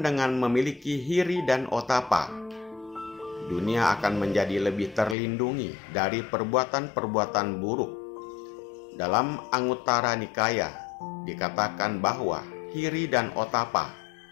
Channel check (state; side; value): drops out; right; at 5.2 s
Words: dengan memiliki hiri dan otapa, dunia akan menjadi lebih terlindungi dari perbuatan-perbuatan buruk. Dalam Anguttara Nikaya dikatakan bahwa hiri dan otapa